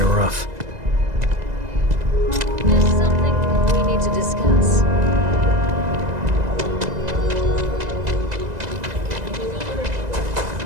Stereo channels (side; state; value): left; late; 2.0 ms